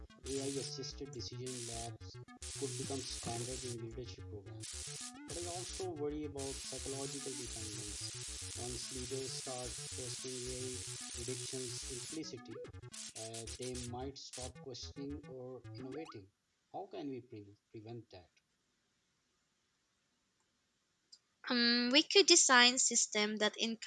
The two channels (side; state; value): both; identical; correlation 1.00